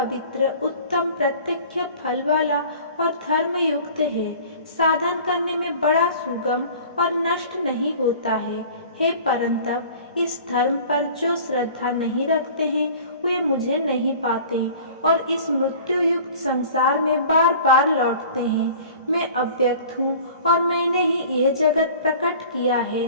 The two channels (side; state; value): both; inverted; correlation -0.45